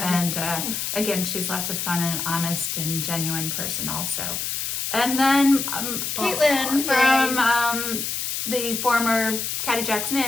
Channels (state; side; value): noise; left; hiss, 2 dB below the sound